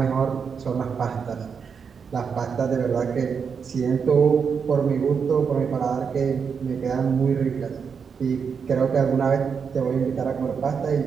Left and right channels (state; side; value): quieter; left; 6.3 dB